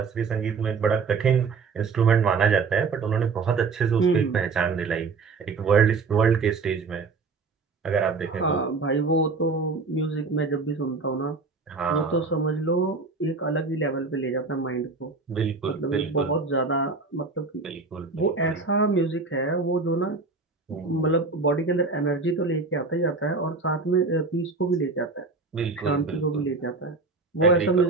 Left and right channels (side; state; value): left; quieter; 4.3 dB